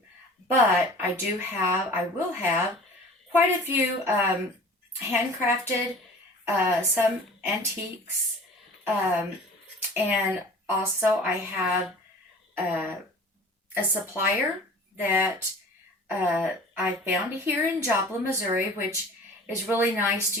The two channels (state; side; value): normal; both; correlation 0.43